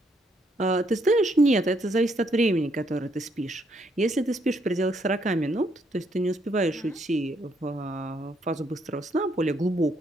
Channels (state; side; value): normal; both; correlation 0.72